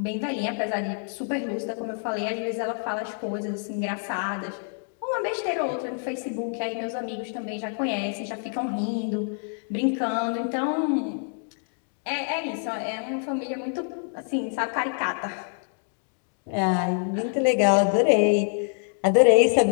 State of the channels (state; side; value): silent; right; 61 dB below the other